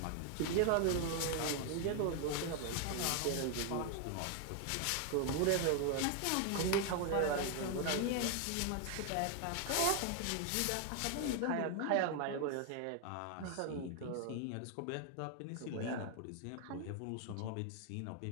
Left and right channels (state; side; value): different; both; correlation 0.00